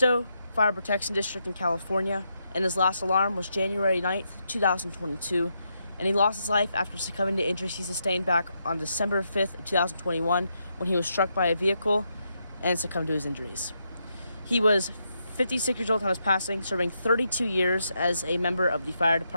Fire Protection District in California, and his last alarm was January 9th, 2022, and he lost his life after succumbing to injuries he sustained back on December 5th, 2021, when he was struck by a vehicle and succumbed to his injuries. He was 56 years old on his passing, serving 32 years as a member of the fire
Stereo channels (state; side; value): inverted; both; correlation -0.81